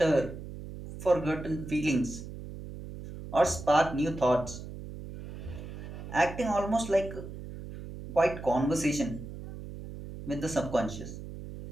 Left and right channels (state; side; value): noise; right; hum, 11 dB below the sound